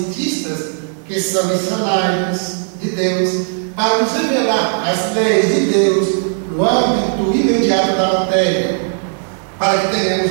que são missionários de Deus, para nos revelar as leis de Deus no âmbito imediato da matéria, para que tenhamos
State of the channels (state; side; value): silent; left; 62 dB below the other